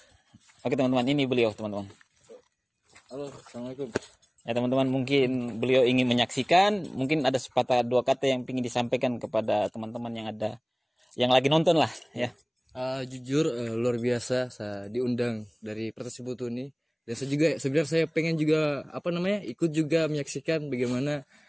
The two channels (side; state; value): both; identical; correlation 1.00